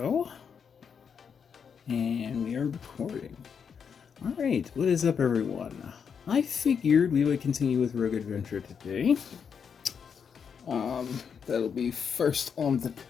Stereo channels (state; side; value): quieter; right; 6.8 dB